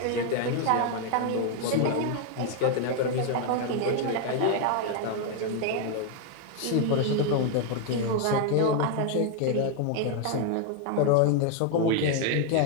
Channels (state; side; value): different; both; correlation 0.00